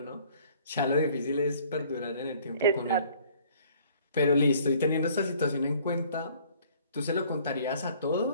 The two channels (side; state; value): both; inverted; correlation -0.56